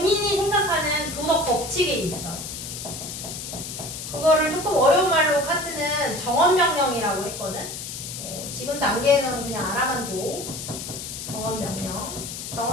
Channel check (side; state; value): left; noise; hiss, 8 dB below the sound